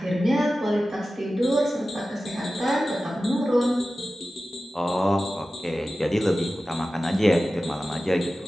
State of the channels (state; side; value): normal; both; correlation 0.95